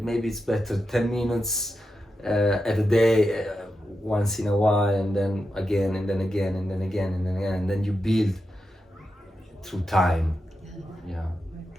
maybe it's better 10 minutes at a day, once in a while, and then again, and then again, and then again, and then again, and then you build through time. Yeah.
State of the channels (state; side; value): normal; both; correlation 0.88